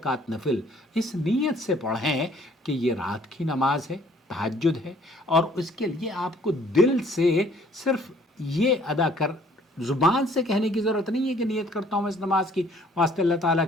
نفل اس نیت سے پڑھیں کہ یہ رات کی نماز ہے، تہجد ہے، اور اس کے لیے آپ کو دل سے صرف یہ ادا کر ज़ुबान से कहने की ज़रूरत नहीं है कि नियत करता हूँ मैं इस नमाज की वास्ते अल्लाह ताला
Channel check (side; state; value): both; normal; correlation 0.59